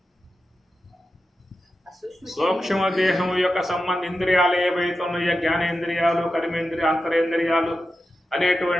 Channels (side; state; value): both; normal; correlation 0.91